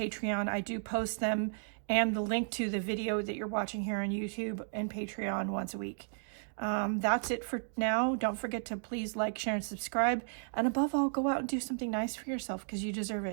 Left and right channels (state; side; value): silent; left; digital silence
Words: I do post them and the link to the video that you're watching here on YouTube and Patreon once a week. That's it for now. Don't forget to please like, share, and subscribe. And above all, go out and do something nice for yourself because you deserve